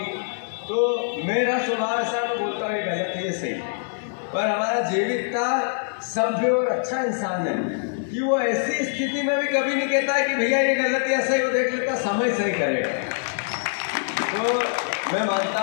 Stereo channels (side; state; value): right; silent; 62 dB below the other